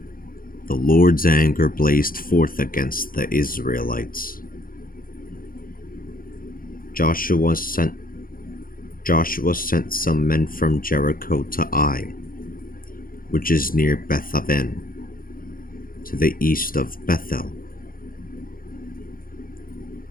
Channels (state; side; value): late; right; 0.41 ms